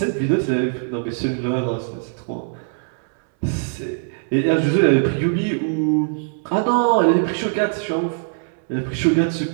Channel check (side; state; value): left; silent; 65 dB below the other